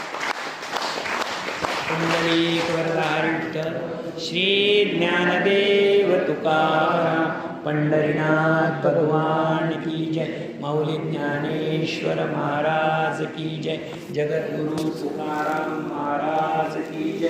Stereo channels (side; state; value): both; identical; correlation 1.00